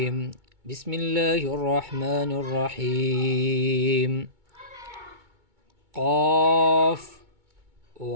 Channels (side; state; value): left; late; 2.2 ms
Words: بسم الله الرحمن الرحيم. قاف